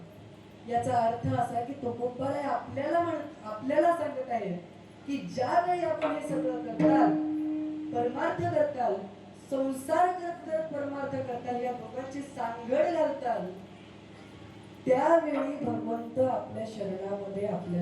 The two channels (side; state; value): both; identical; correlation 1.00